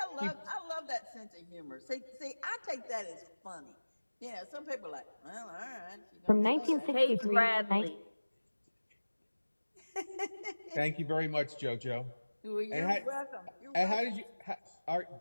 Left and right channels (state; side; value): inverted; both; correlation -1.00